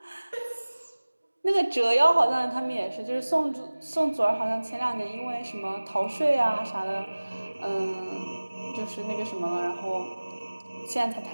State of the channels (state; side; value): inverted; both; correlation -1.00